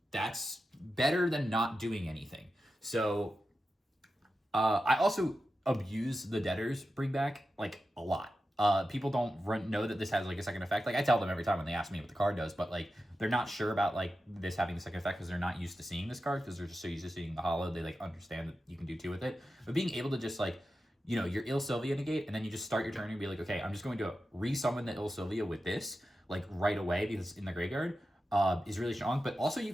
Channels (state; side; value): normal; both; correlation 0.91